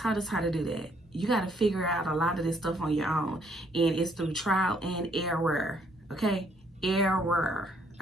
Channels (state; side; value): normal; both; correlation 0.67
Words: us how to do that. You got to figure out a lot of this stuff on your own, and it's through trial and error. Okay, error.